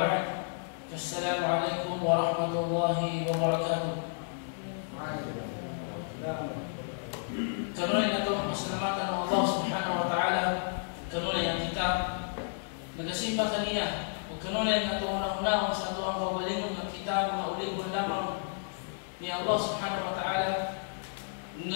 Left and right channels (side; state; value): right; silent; digital silence